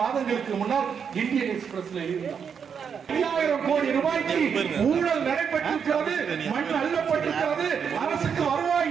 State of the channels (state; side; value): quieter; left; 6.9 dB